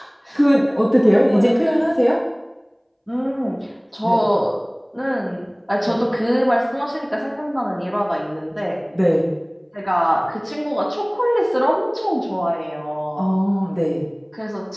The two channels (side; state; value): both; identical; correlation 1.00